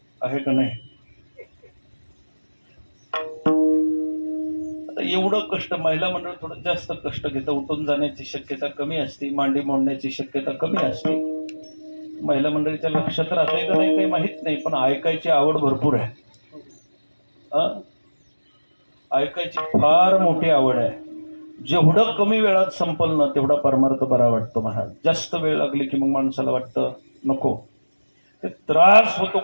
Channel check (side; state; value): both; inverted; correlation -1.00